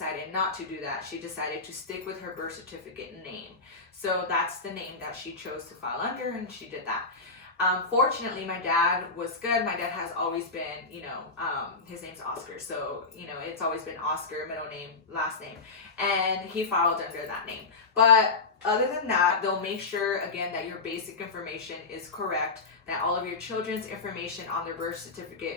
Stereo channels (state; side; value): quieter; right; 4.0 dB